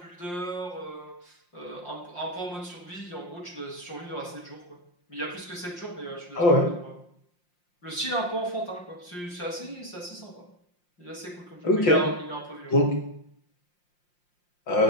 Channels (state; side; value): late; right; 5.7 ms